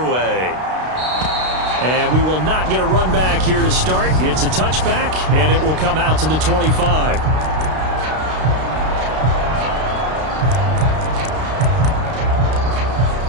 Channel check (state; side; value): late; left; 32 ms